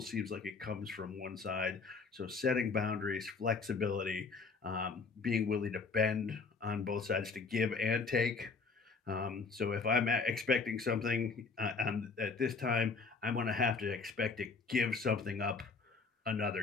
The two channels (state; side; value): quieter; right; 4.6 dB